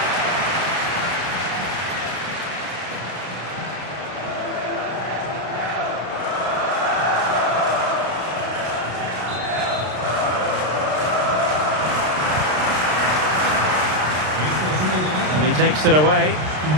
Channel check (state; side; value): late; left; 33 ms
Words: And he takes it away.